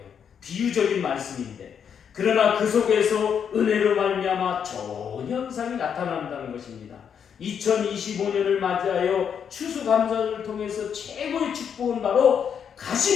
비유적인 말씀인데, 그러나 그 속에서 은혜로 말미암아 좋은 현상이 나타난다는 것입니다. 2025년을 맞이하여 추수감사를 통해서 최고의 축복은 바로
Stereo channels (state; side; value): quieter; right; 7.7 dB